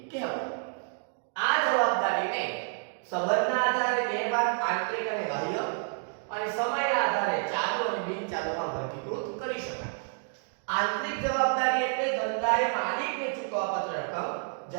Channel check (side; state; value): left; silent; 58 dB below the other